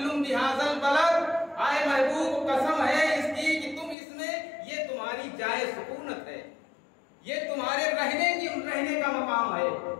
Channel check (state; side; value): drops out; right; at 4.0 s